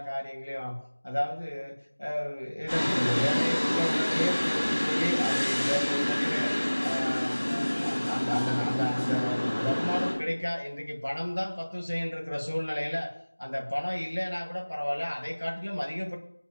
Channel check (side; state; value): both; inverted; correlation -1.00